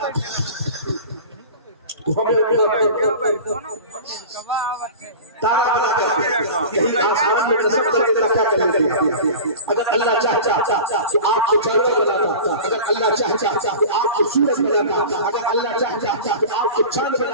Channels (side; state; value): both; inverted; correlation -0.35